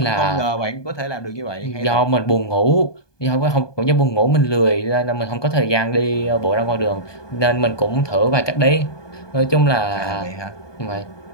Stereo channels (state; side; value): late; right; 1.2 ms